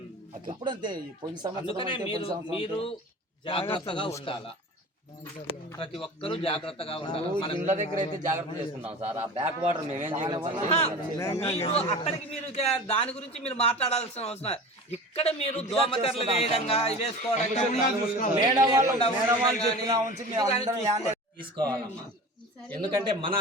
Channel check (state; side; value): normal; both; correlation 0.36